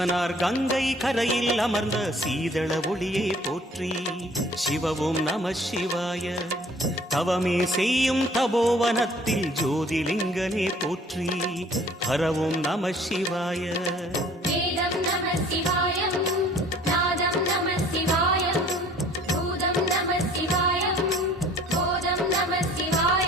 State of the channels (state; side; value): normal; both; correlation 0.54